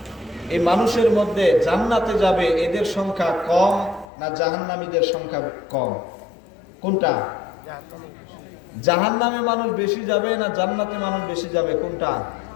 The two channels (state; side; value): drops out; right; at 4.0 s